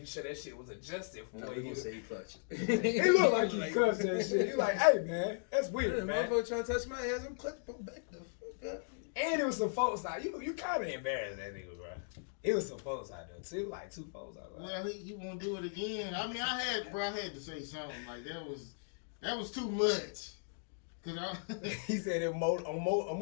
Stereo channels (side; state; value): right; silent; digital silence